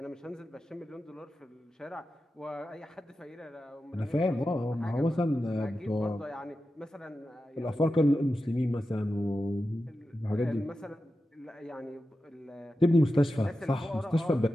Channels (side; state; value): both; normal; correlation 0.92